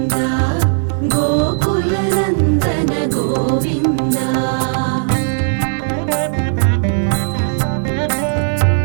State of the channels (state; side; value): silent; left; digital silence